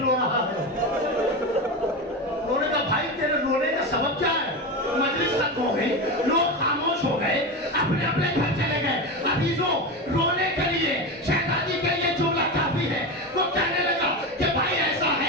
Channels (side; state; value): both; normal; correlation 0.20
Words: رو رہا ہے۔ انہوں نے کہا بھائی تیرے رونے کا سبب کیا ہے؟ مجلس ختم ہو گئی، لوگ خاموش ہو گئے، اپنے اپنے گھر چلے گئے۔ عزیزوں، رونے کے لیے شہزادی کے لیے جملہ کافی ہے۔ وہ کہنے لگا کہ بھائی ایسا